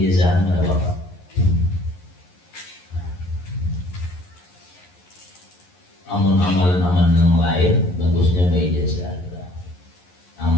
ada Bapak. Amalan-amalan yang lain bagusnya ijazah.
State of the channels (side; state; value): right; late; 11 ms